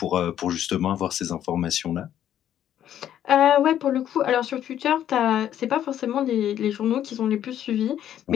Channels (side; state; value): right; quieter; 10.8 dB